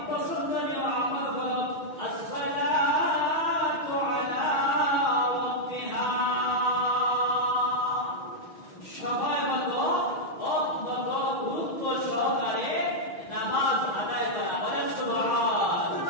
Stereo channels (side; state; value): right; late; 6.2 ms